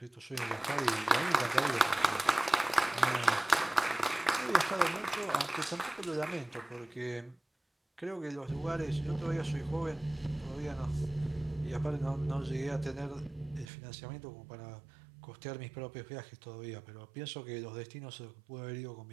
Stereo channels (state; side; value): drops out; left; at 13.7 s